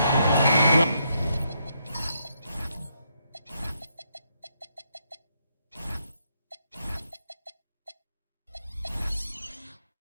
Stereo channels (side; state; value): both; inverted; correlation -0.77